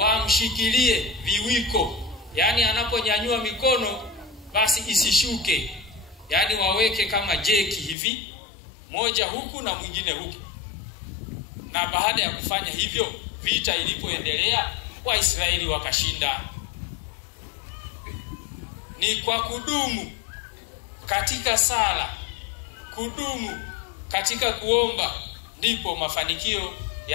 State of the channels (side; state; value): right; drops out; at 8.0 s